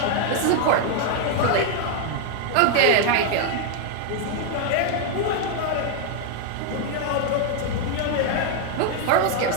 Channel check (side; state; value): both; different; correlation 0.00